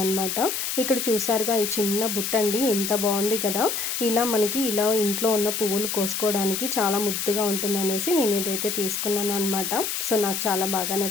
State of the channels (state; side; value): noise; left; hiss, 2 dB below the sound